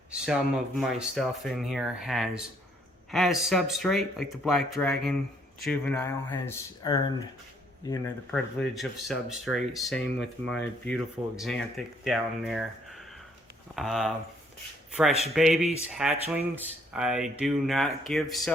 some of my stuff in here has substrate, like the Black Dragon Juvenile has earned, you know, the privilege of substrate. Same with my beautiful Xanthic down there. Fresh babies, hatchlings, I do not give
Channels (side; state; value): both; normal; correlation 0.67